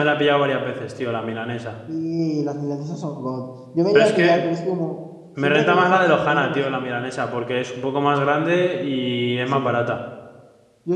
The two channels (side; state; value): both; identical; correlation 1.00